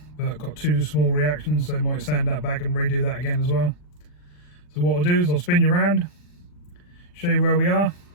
but got 2 small reactions, so I might sand that back and redo that again as well. So what I'll do is I'll spin you around, show you where we are,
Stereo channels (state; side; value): late; right; 40 ms